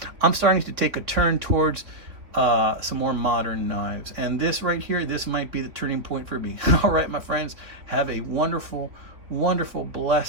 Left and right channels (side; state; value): left; late; 3.3 ms